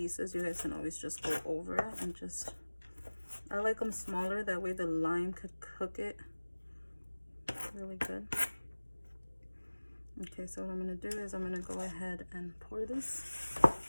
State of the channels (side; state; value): both; inverted; correlation -1.00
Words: you guys can always just go over it and just, I like them smaller, that way the lime could cook it really good. Okay, so what I'm gonna do is I'm gonna go ahead and pour this